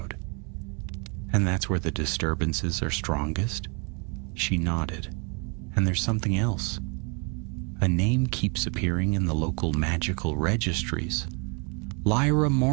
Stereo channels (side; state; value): left; quieter; 34.1 dB